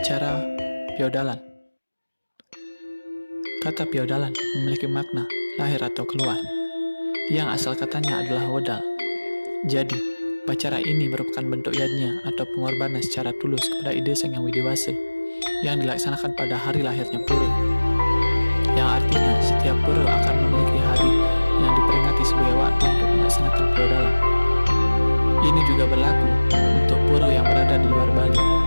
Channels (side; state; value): both; inverted; correlation -1.00